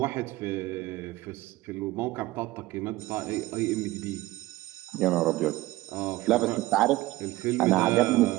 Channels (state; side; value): quieter; left; 18.4 dB